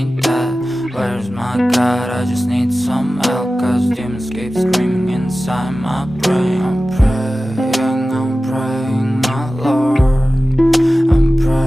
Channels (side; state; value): both; normal; correlation 0.96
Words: dead. Where's my God? I just need some help, cause demons keep screaming inside my brain. I'm praying, my Lord. I'm